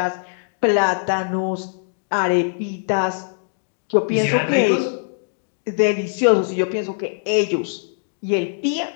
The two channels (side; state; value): right; silent; digital silence